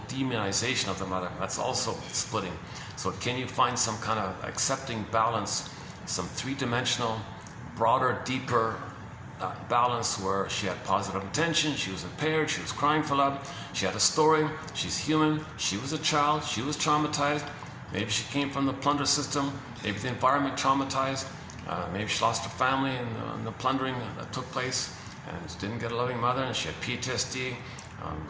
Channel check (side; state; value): both; identical; correlation 1.00